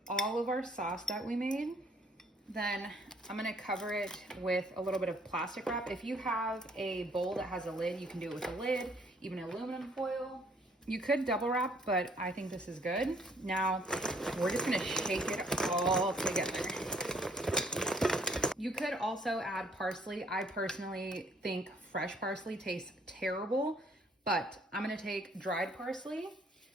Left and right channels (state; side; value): normal; both; correlation 0.63